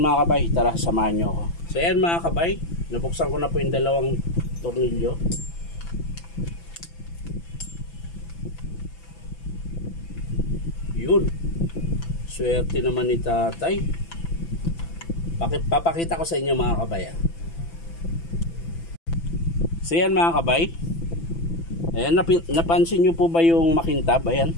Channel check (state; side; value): late; right; 6.0 ms